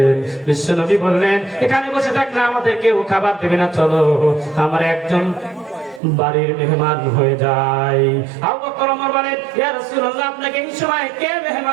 বিশ্বনবী বললেন, এখানে বসে থাকলে আমাদের কেউ খাবার দেবে না, চলো আমার একজন বাড়ির মেহমান হয়ে যায়। আবু বকর ওমর বলেন, ইয়া রাসূলুল্লাহ আপনাকে এই সময় কে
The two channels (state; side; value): drops out; left; at 6.0 s